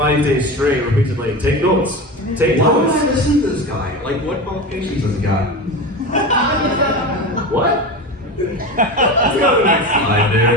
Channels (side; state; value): both; normal; correlation 0.26